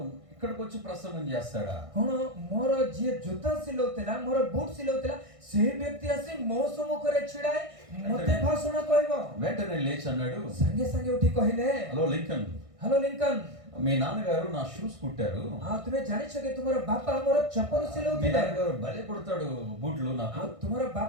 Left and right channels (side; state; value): left; late; 1.6 ms